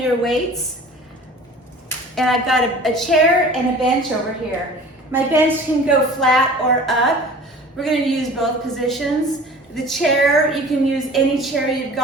weights. And I've got a chair and a bench over here. My bench can go flat or up. We're gonna use both positions. The chair, you can use any chair you've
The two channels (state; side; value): normal; both; correlation 0.43